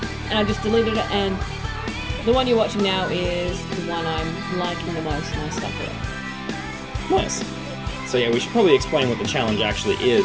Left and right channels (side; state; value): both; identical; correlation 1.00